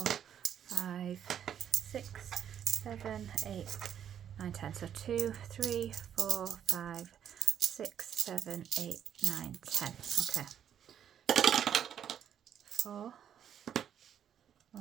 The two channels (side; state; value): left; quieter; 9.2 dB